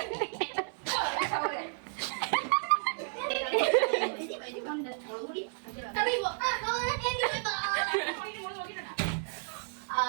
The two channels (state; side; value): silent; left; digital silence